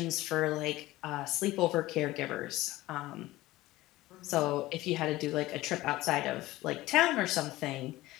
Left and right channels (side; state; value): right; quieter; 17.7 dB